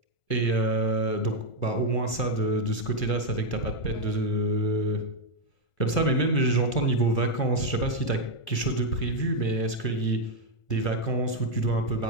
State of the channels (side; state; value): right; late; 1.4 ms